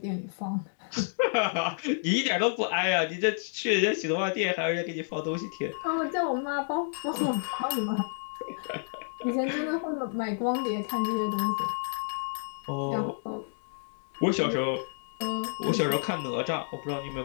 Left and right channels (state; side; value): silent; right; digital silence